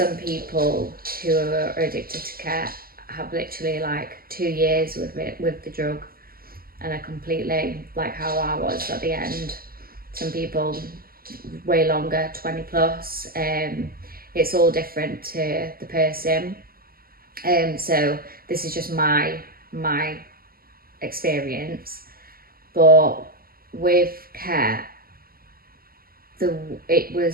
people who are addicted to ket have literally like 2 years with the drug, and are completely like how I was at the end. Some people way longer, 20 plus. It's all different to the person. So this is just my experience. But with ket, it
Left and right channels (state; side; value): late; left; 0.43 ms